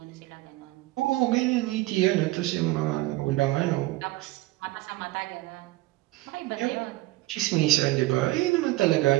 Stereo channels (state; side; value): quieter; left; 18.8 dB